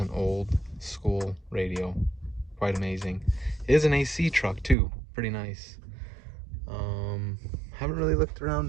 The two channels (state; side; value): drops out; left; at 4.8 s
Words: old school radio. Quite amazing. It is an AC truck too. Pretty nice. Haven't really looked